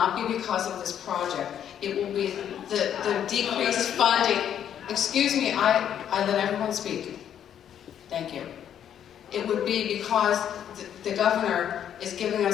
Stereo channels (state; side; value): quieter; right; 9.6 dB